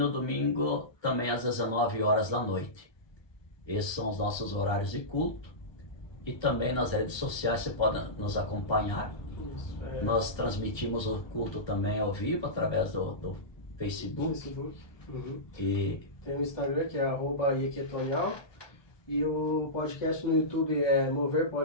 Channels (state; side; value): late; right; 1.3 ms